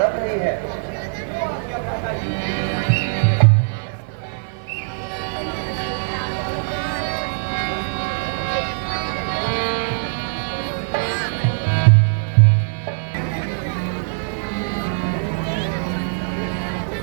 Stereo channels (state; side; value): silent; left; 56 dB below the other